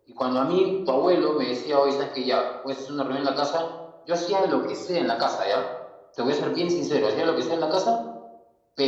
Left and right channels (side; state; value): both; identical; correlation 1.00